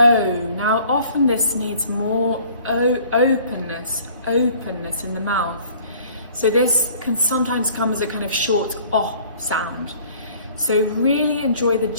Now often this needs more openness in the mouth. So this can sometimes come as a kind of short O sound. So really enjoy the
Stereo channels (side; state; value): both; inverted; correlation -0.53